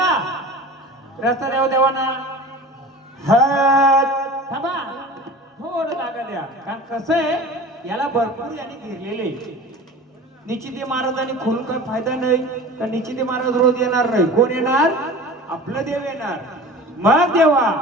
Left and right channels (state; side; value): normal; both; correlation 0.37